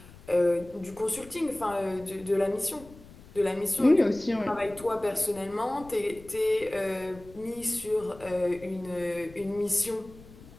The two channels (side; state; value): left; noise; rumble, 20 dB below the sound